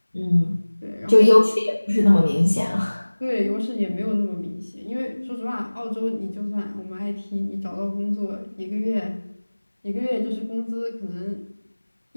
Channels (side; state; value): both; inverted; correlation -1.00